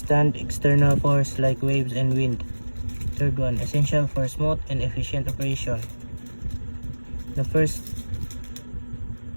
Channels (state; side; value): inverted; both; correlation -1.00